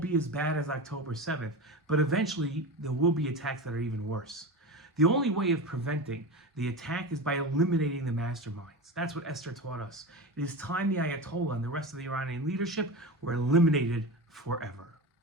as bad as October 7th, but eventually there will be attacks that are even worse. The only way of preventing the attack is by eliminating the masterminds. That's what Esther taught us. It is time the Ayatollah and the rest of the Iranian leadership were eliminated forever.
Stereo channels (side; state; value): both; normal; correlation 0.24